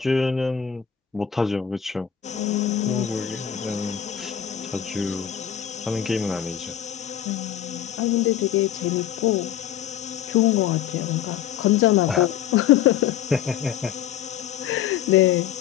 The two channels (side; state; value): right; quieter; 9.8 dB